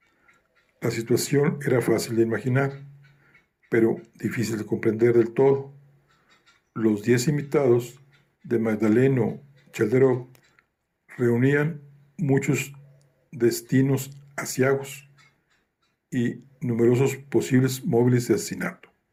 La situación era fácil de imaginar, pero difícil de comprender del todo. Los 10 invitados de Magdaleno Chalderov reunían muchos destinos aciagos y numerosos posibles móviles de asesinato.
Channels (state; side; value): identical; both; correlation 1.00